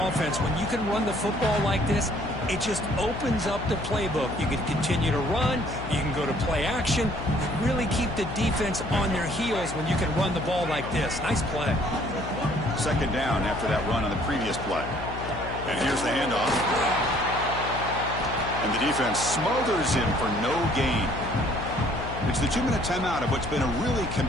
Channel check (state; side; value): noise; left; hum, 8 dB below the sound